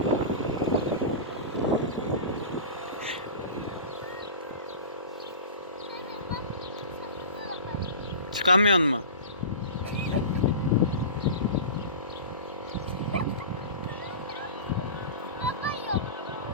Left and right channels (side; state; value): both; inverted; correlation -0.32